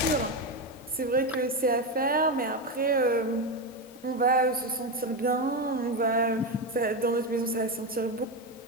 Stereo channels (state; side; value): normal; both; correlation 0.12